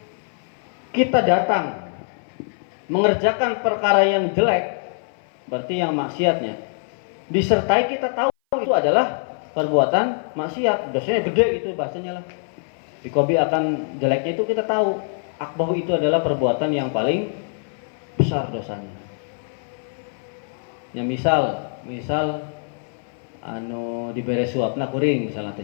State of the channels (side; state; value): right; silent; 57 dB below the other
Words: kita datang mengerjakan perkara yang jelek, berarti yang maksiatnya, disertai kita tahu itu adalah perbuatan maksiat, dosanya gede itu bahasanya lah. Bi qabi akan jeleknya itu kita tahu, akbahu itu adalah perbuatan yang paling besar dosanya. Ya misal diberi suapna kuring misalnya